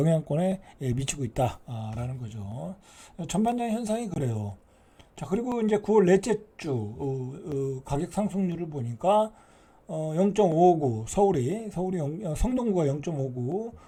미치고 있다. 라는 거죠. 전반적인 현상이 그래요. 자, 그리고 이제 9월 넷째 주, 가격 상승률을 보니까, 0.59 성동구가 0.59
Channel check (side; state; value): both; identical; correlation 1.00